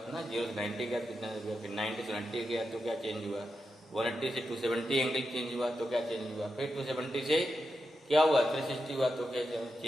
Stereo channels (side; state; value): both; normal; correlation 0.88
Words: ना, 0 से 90 गया तो कितना गया, फिर 90 से 90 गया तो क्या चेंज हुआ, 180 से 270 एंगल चेंज हुआ तो क्या चेंज हुआ, फिर 270 से क्या हुआ, 360 हुआ तो क्या